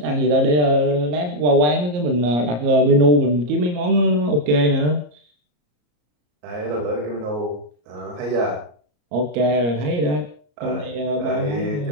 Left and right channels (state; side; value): late; left; 34 ms